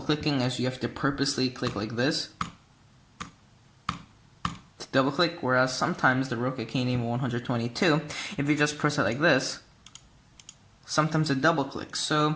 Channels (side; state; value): both; identical; correlation 1.00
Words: clicking, as you have to purposely click like this double click, whereas sometimes the Roccat Kain 122, if you just press it like this, sometimes it double clicks.